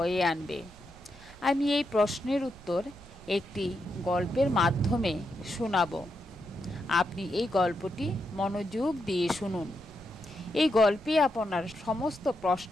আনবে। আমি এই প্রশ্নের উত্তর একটি গল্পের মাধ্যমে শোনাব। আপনি এই গল্পটি মনোযোগ দিয়ে শুনুন। এই গল্পে আপনার সমস্ত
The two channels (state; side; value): noise; right; rumble, 20 dB below the sound